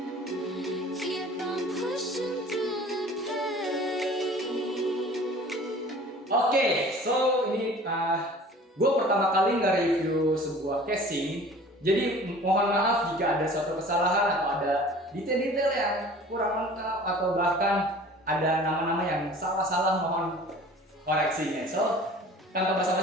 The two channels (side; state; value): both; normal; correlation 0.45